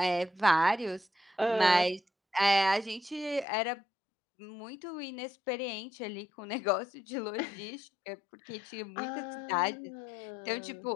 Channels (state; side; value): drops out; right; at 3.5 s